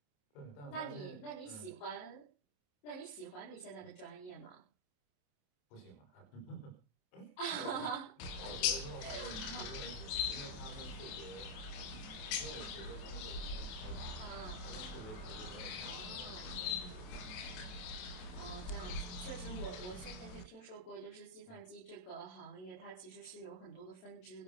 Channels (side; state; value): right; late; 28 ms